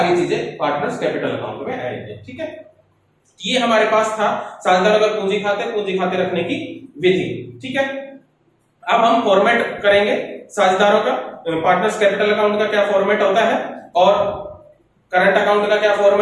चीजें पार्टनर्स कैपिटल अकाउंट में आएंगी, ठीक है। ये हमारे पास था साझेदार अगर पूंजी खाते रखने की विधि, ठीक है। अब हम फॉर्मेट करेंगे साझेदारों का, पार्टनर्स कैपिटल अकाउंट का क्या फॉर्मेट होता है और करंट अकाउंट का क्या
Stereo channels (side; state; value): both; identical; correlation 1.00